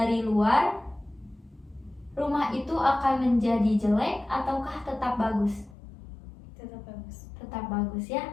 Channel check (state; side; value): drops out; right; at 5.8 s